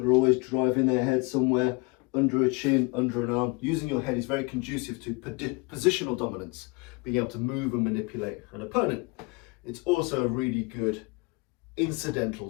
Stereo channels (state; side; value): quieter; right; 27.9 dB